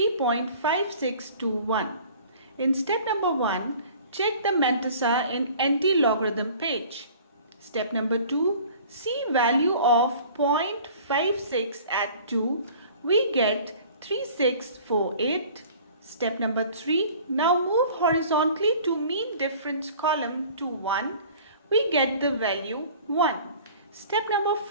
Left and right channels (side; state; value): both; inverted; correlation -0.47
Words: In step number 1, check the Mentesa in anti-logarithm page. Step number 2, see value of 0.56 at 2. We get 3648. Step number 3, now move horizontally to mean difference column to 1. We get the value 1. Step number